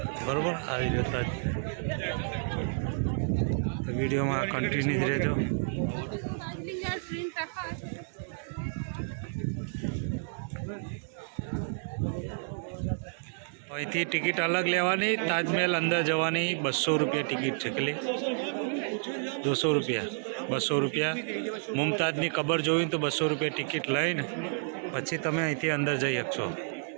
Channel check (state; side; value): silent; left; digital silence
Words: બરાબર, આવી ગયો તાજ. તો વિડીયોમાં કન્ટિન્યુ જ રહેજો. અહીંથી ટિકિટ અલગ લેવાની, તાજમહેલ અંદર જવાની 200 રૂપિયા ટિકિટ છે. કેટલી? 200 રૂપિયા. 200 રૂપિયા. મુમતાજની કબર જોઈને તો 200 રૂપિયા ટિકિટ લઈને પછી તમે અહીંથી અંદર જઈ શકશો.